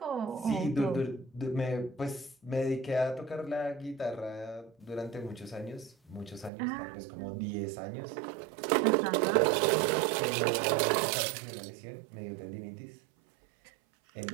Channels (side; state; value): left; drops out; at 6.5 s